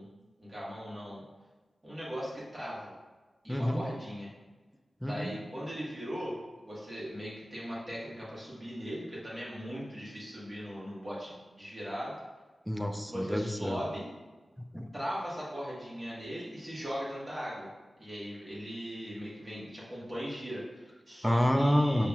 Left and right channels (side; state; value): both; normal; correlation 0.97